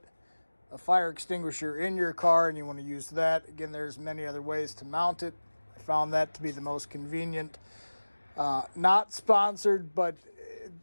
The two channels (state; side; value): inverted; both; correlation -1.00